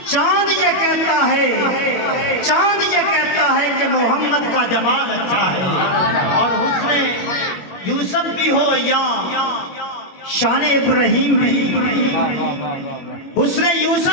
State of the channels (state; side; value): late; right; 21 ms